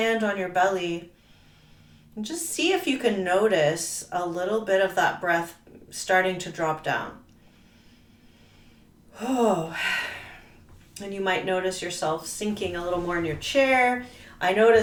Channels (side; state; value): both; identical; correlation 1.00